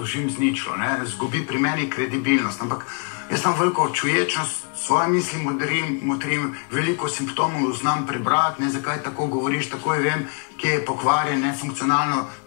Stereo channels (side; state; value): right; quieter; 37.5 dB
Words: z ničlo, zgubi pri meni kredibilnost, ampak jaz imam veliko čuječnost, svoje misli motrim, veliko simptomov znam prebrati, zakaj tako govoriš, takoj vem, kje je pokvarjen, nefunkcionalno,